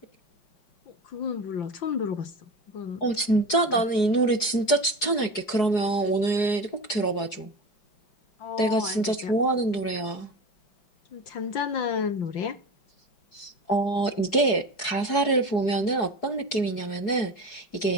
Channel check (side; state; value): right; late; 4.7 ms